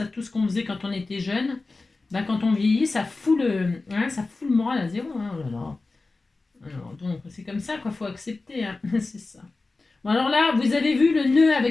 tout ce qu'on faisait quand on était jeune, ben, quand on vieillit, ça fout le moral à zéro. Hein. Oh là là. Alors, donc, c'est comme ça qu'il faut accepter. Hein. C'est ça. Bon, alors là, vous avez vu le nœud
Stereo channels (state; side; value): quieter; right; 3.5 dB